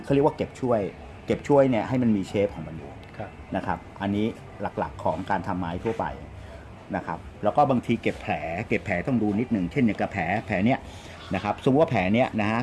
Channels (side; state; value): both; identical; correlation 1.00